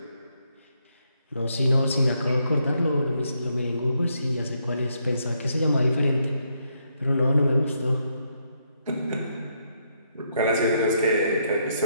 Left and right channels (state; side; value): inverted; both; correlation -0.77